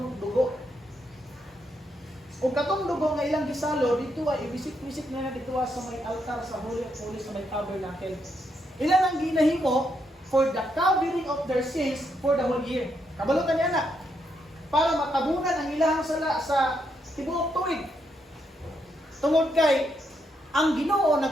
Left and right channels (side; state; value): both; normal; correlation 0.78